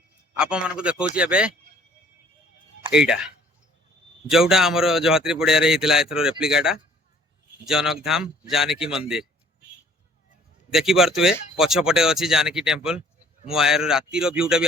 आपन मन को देखौची एबे एइटा जोटा हमर जहात्री पड़िया रे हितला एथरो रेप्लिकाटा जनक धाम जानकी मंदिर देखि परतुए पछ पटे अछि जानकी टेंपल मु आयर राती रो व्यूटा भी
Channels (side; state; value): both; normal; correlation 0.56